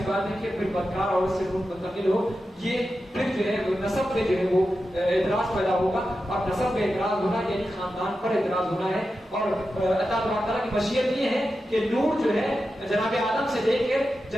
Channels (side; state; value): both; normal; correlation 0.91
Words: بات ہے کہ پھر بدکار عورت سے نور منتقل ہو یہ پھر جو ہے نسب میں جو ہے وہ اعتراض پیدا ہوگا. اور نسب میں اعتراض ہونا یعنی خاندان پر اعتراض ہونا ہے. اور اللہ تعالیٰ کی مشیت یہ ہے کہ نور جو ہے جناب آدم سے لے کر